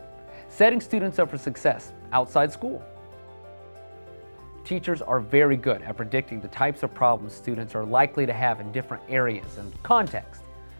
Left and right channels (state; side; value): inverted; both; correlation -1.00